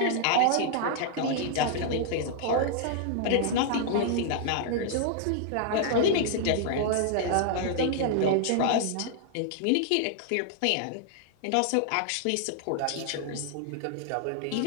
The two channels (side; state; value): both; different; correlation -0.01